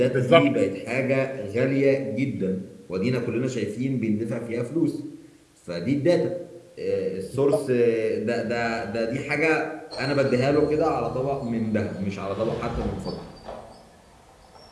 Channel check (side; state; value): both; identical; correlation 1.00